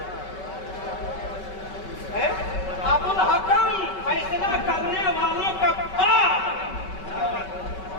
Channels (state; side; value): late; right; 5.3 ms